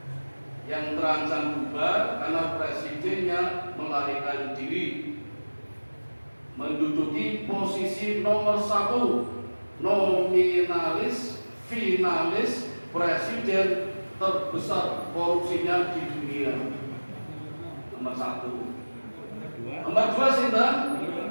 yang terancam bubar karena presidennya melarikan diri, menduduki posisi nomor 1 nominalis finalis presiden terbesar korupsinya di dunia. Nomor 1. Nomor 2 sinten?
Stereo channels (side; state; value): both; inverted; correlation -1.00